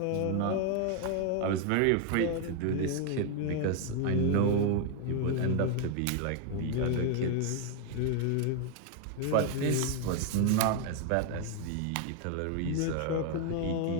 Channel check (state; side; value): different; both; correlation 0.01